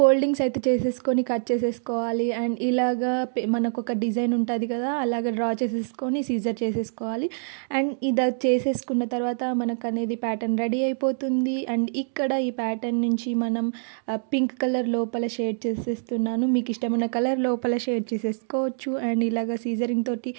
అయితే చేసేసుకొని కట్ చేసేసుకోవాలి. అండ్ ఇలాగా మనకు ఒక డిజైన్ ఉంటుంది కదా, అలాగ డ్రా చేసేసుకొని సీజర్ చేసేసుకోవాలి. అండ్ ఇది చేసేసుకున్న తర్వాత మనకు అనేది ప్యాటర్న్ రెడీ అయిపోతుంది. అండ్ ఇక్కడ ఈ ప్యాటర్న్ నుంచి మనం పింక్ కలర్ లోపల షేడ్ చేసేస్తున్నాను. మీకు ఇష్టమైన కలర్ లోపల షేడ్ చేసేసుకోవచ్చు. అండ్ ఇలాగ సీజరింగ్ తోటి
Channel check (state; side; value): silent; left; digital silence